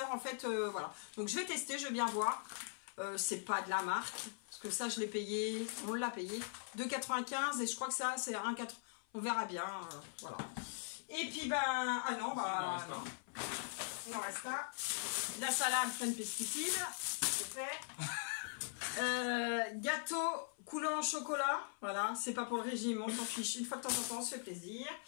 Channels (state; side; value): silent; right; 50 dB below the other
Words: en fait, voilà. Donc je vais tester, je vais bien voir. C'est pas de la marque, parce que ça je l'ai payé, on l'a payé, 2,95 et je crois que ça c'est 1,4. On verra bien, voilà. Et puis ben, ah non, bah non. Il en reste un. La salade pleine de pesticides, c'est fait. Gâteau coulant au chocolat, voilà, c'est pas pour le régime, on s'en fiche, une fois de temps en temps, on se fait plaisir.